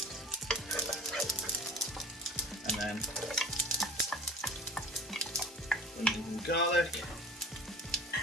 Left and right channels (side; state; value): both; normal; correlation 0.41